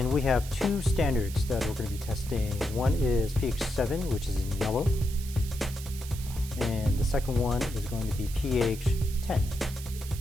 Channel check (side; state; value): right; noise; hiss, 14 dB below the sound